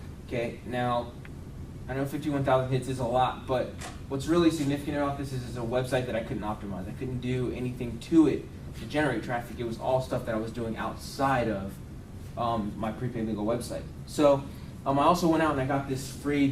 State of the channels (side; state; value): both; identical; correlation 1.00